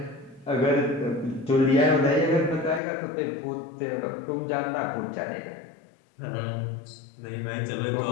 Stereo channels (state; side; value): drops out; right; at 2.8 s